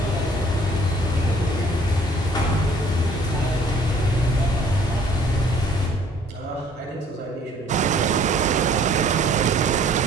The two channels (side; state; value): both; normal; correlation 0.56